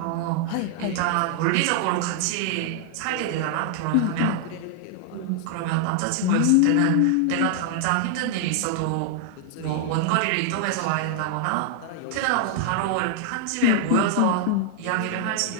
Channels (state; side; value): different; both; correlation 0.00